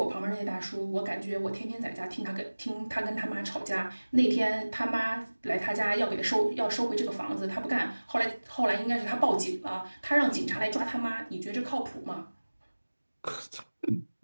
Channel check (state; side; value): inverted; both; correlation -1.00